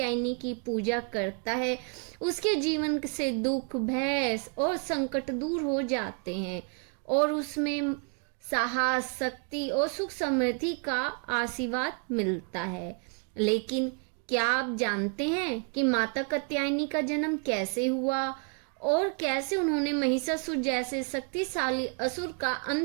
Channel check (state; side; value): quieter; left; 40.0 dB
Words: की पूजा करता है, उसके जीवन से दुख, भय और संकट दूर हो जाते हैं और उसमें साहस, शक्ति और सुख समृद्धि का आशीर्वाद मिलता है। लेकिन क्या आप जानते हैं कि माता कात्यायनी का जन्म कैसे हुआ और कैसे उन्होंने महिषासुर जैसे शक्तिशाली असुर का